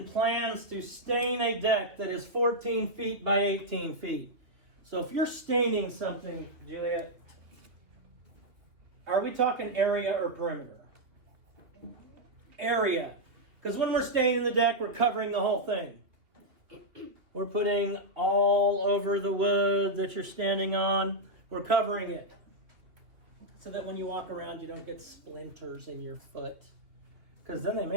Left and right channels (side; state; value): left; late; 2.6 ms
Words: plans to stain a deck that is 14 feet by 18 feet. So if you're staining something, Juliet, Are we talking area or perimeter? Area. Because when we're staining the deck, we're covering the whole thing. We're putting all over the wood that you're standing on. We're covering it. So that when you walk around, you don't get splinters in your foot. Because then they